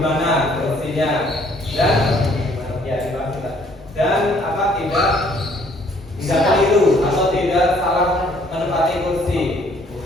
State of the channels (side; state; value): both; normal; correlation 0.62